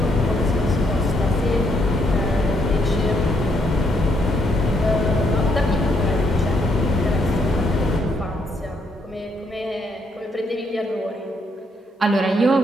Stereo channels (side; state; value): both; normal; correlation 0.73